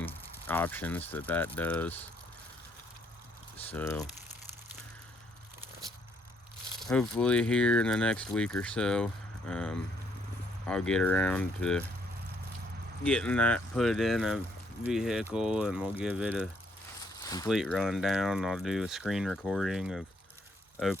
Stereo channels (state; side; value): normal; both; correlation 0.70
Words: options that does. So hopefully here in the next week or so, I'll get around to getting that put in a vehicle, and we'll give it a complete rundown. I'll do a screen recording of